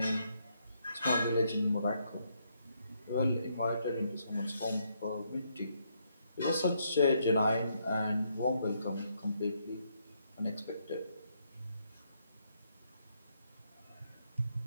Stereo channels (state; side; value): inverted; both; correlation -0.75